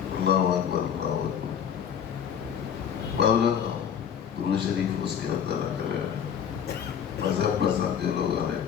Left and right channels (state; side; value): quieter; right; 8.3 dB